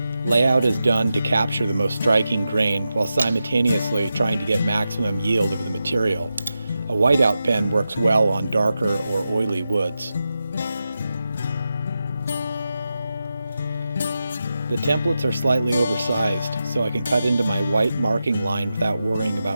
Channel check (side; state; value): both; inverted; correlation -0.90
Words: Layout is done to capture the most striking grain while simultaneously trying to get maximum yield of the material. A whiteout pen works well on darker or oily woods. The templates are slightly oversized, so I can cut into my white marking line without worrying